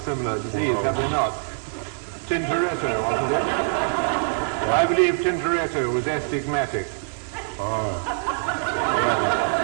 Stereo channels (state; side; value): silent; left; digital silence